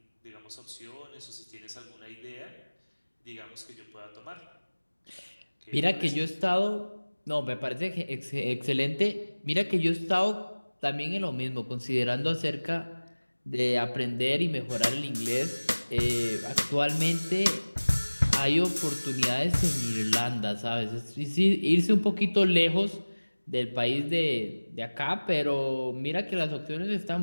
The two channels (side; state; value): both; inverted; correlation -1.00